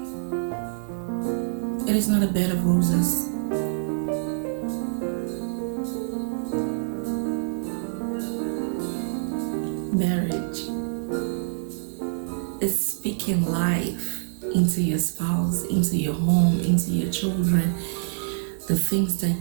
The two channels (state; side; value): silent; left; digital silence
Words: It is not a bed of roses. Marriage is speaking life into your spouse, into your home, into your children, the things that